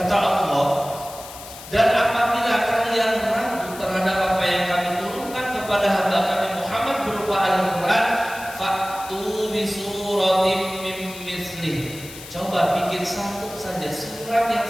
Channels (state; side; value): noise; left; hiss, 15 dB below the sound